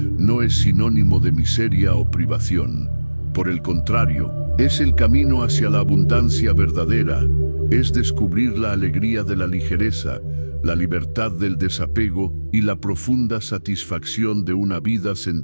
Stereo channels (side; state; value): both; inverted; correlation -1.00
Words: no es sinónimo de miseria o privación. Por el contrario, es el camino hacia la abundancia verdadera, es descubrir la alegría de la ligereza, la libertad del desapego y la profunda satisfacción de una vida